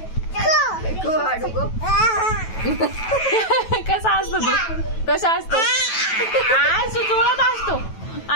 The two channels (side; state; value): right; late; 9.2 ms